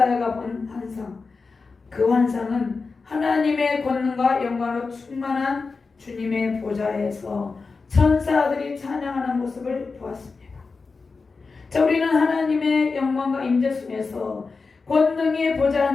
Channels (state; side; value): quieter; right; 4.4 dB